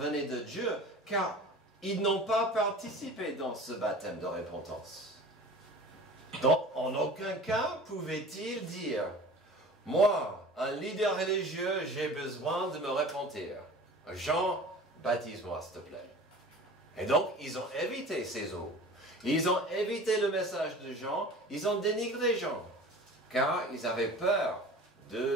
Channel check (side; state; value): both; normal; correlation 0.40